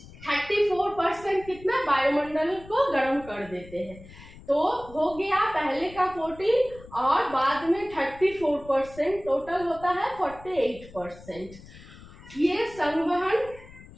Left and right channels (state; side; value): noise; left; rumble, 19 dB below the sound